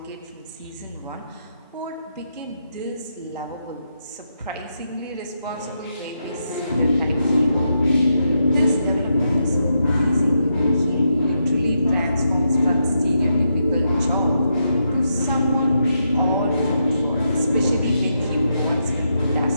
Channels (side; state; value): both; inverted; correlation -0.82